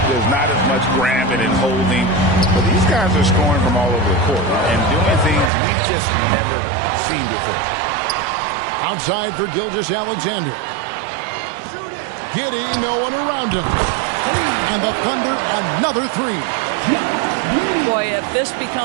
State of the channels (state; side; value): drops out; left; at 5.5 s